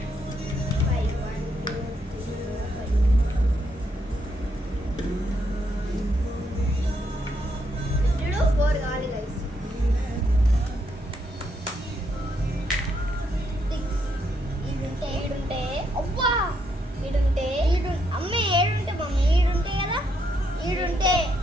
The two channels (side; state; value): both; normal; correlation 0.76